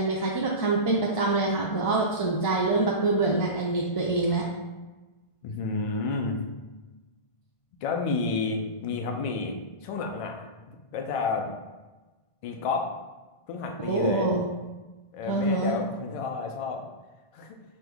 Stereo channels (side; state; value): right; late; 1.5 ms